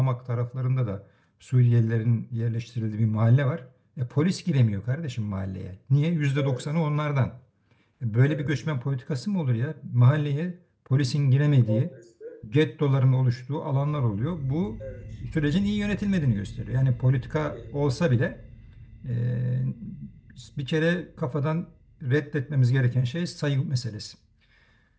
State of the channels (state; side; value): identical; both; correlation 1.00